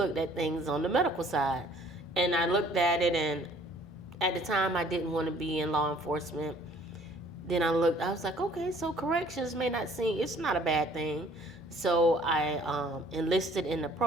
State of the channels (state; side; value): normal; both; correlation 0.56